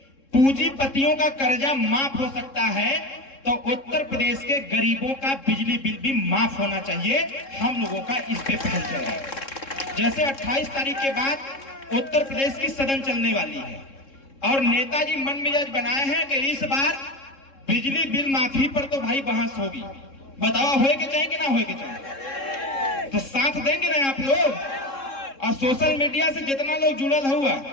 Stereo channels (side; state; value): right; late; 3.7 ms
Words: पूंजीपतियों का कर्जा माफ हो सकता है तो उत्तर प्रदेश के गरीबों का बिजली बिल भी माफ होना चाहिए। हम लोगों का इस पे पहल चल रहा है। जैसे 28 तारीख के बाद उत्तर प्रदेश की सदन चलने वाली है और नेताजी मन मिजाज बनाए हैं कि इस बार बिजली बिल माफी पर तो भाई बहस होगी। बताओ होए के चाहिए कि ना होए के चाहिए? तो साथ देंगे ना आप लोग? और सोशल मीडिया से जितना लोग जुड़ल हुआ,